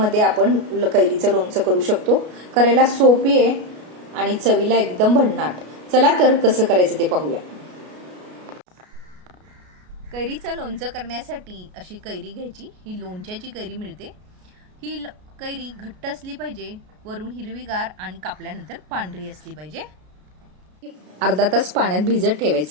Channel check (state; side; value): late; left; 33 ms